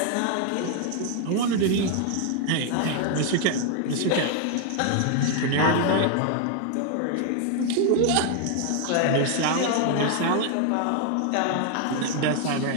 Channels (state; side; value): different; both; correlation 0.00